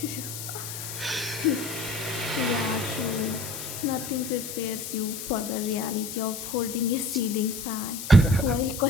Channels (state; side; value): noise; left; hiss, 8 dB below the sound